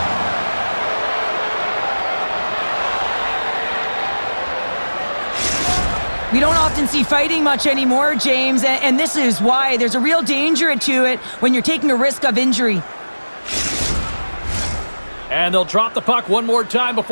We don't often see fighting much anymore, James, and this is why. There's a real danger to it when you're taking a risk of injury. And they'll drop the puck one more time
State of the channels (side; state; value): both; inverted; correlation -1.00